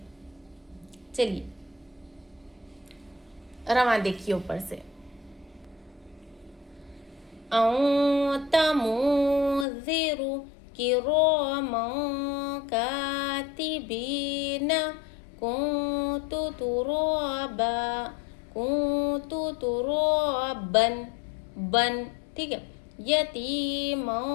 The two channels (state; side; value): drops out; right; at 9.7 s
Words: चलिए रवां देखिए ऊपर से। औ तमो किरामा कातिबीन कुन्तु तुराबन बन, ठीक है। यतीमा